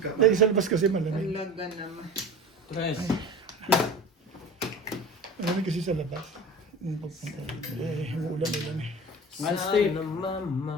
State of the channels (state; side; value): normal; both; correlation 0.35